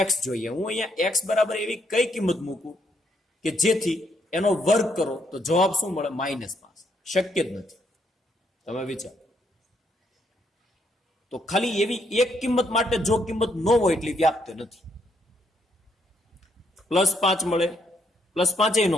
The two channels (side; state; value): both; normal; correlation 0.74